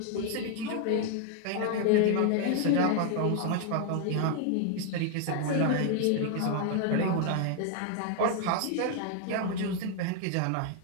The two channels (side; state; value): both; different; correlation 0.00